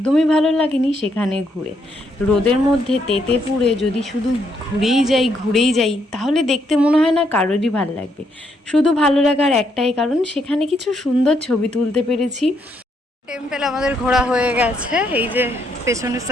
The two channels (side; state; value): both; normal; correlation 0.74